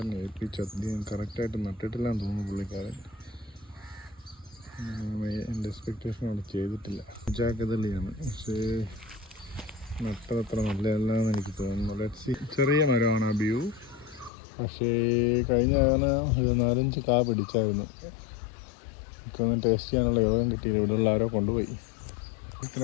ഏൽപ്പിച്ച് അധികം കറക്റ്റായിട്ട് നട്ടിട്ടില്ലാന്ന് തോന്നുന്നു പുള്ളിക്കാരൻ. എൻ്റെ എക്സ്പെക്റ്റേഷൻ അവിടെ ചെയ്തിട്ടില്ല. ജാക്കതലിയാണ്, പക്ഷേ നട്ടതത്ര നല്ലതല്ലാന്ന് എനിക്ക് തോന്നുന്നു. ലെറ്റ്സ് ചെറിയ മരമാണ് ആ വ്യൂ. പക്ഷേ കഴിഞ്ഞ കാലം ഇത് 4-5 കാ പിടിച്ചായിരുന്നു. എനിക്കൊന്നും ടേസ്റ്റ് ചെയ്യാനുള്ള യോഗം കിട്ടിയില്ല. ഇവിടെയുള്ള ആരോ കൊണ്ടുപോയി.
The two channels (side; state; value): right; drops out; at 14.3 s